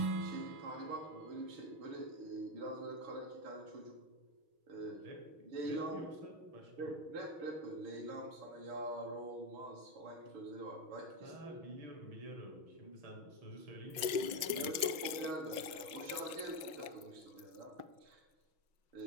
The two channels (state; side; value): late; left; 6.2 ms